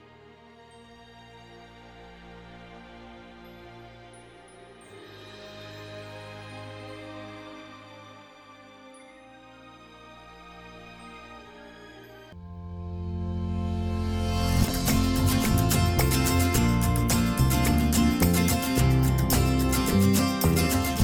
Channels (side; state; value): both; identical; correlation 1.00